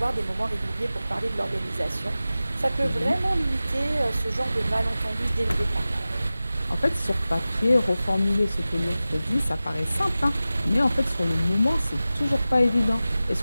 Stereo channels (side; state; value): both; inverted; correlation -0.96